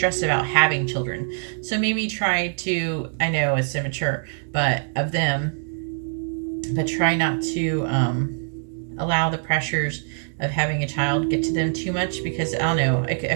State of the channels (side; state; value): left; silent; digital silence